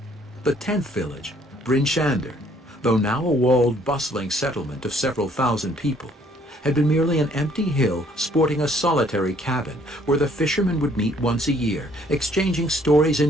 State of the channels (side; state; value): both; normal; correlation 0.63